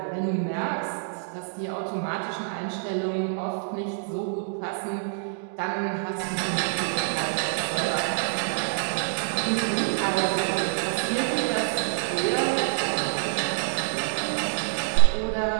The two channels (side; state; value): left; silent; digital silence